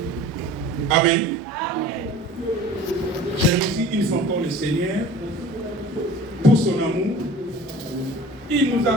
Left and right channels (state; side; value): normal; both; correlation 0.44